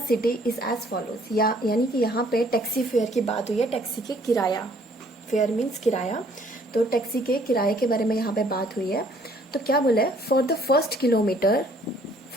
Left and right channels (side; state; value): both; normal; correlation 0.61